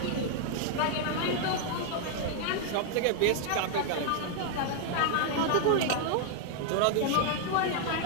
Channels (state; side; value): different; both; correlation 0.00